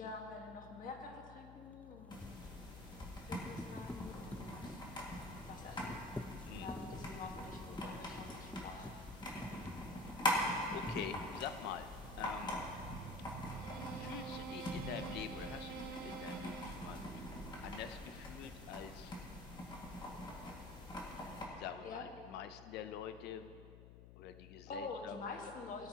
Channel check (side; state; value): left; noise; hum, 14 dB below the sound